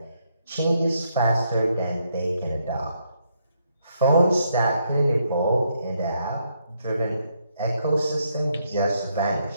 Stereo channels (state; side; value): inverted; both; correlation -0.75